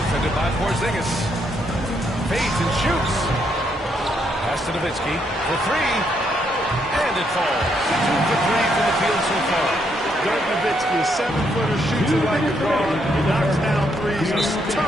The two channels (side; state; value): both; normal; correlation 0.75